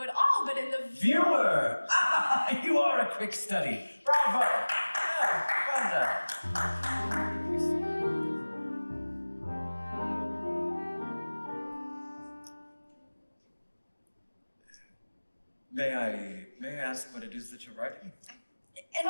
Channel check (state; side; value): inverted; both; correlation -1.00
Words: at all, but in the Viewer! Ah, you are a quick study. Bravo! Yeah, well done. May I ask what it is that you're writing? An